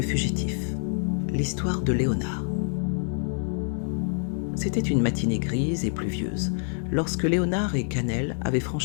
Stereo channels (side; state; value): right; silent; 61 dB below the other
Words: fugitif, l'histoire de Léonard. C'était une matinée grise et pluvieuse, lorsque Léonard et Cannelle avaient